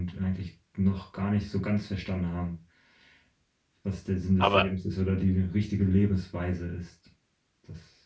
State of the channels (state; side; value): identical; both; correlation 1.00